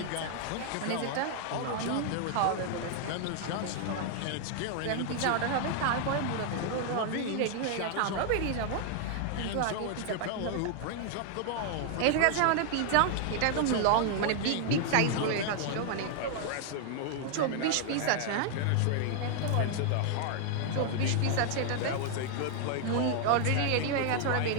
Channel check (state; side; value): different; both; correlation 0.00